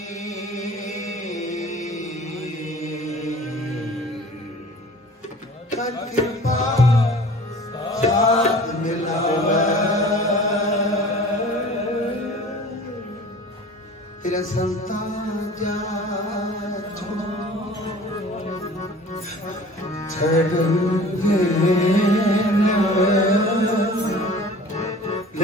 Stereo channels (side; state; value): both; normal; correlation 0.44